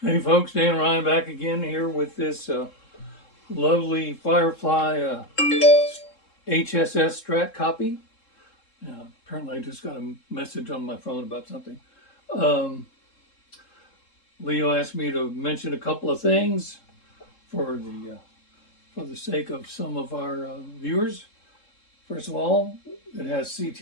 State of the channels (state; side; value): late; right; 3.7 ms